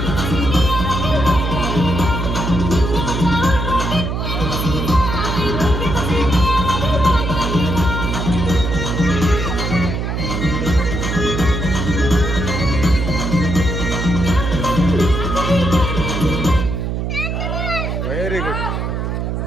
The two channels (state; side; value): noise; right; hum, 2 dB below the sound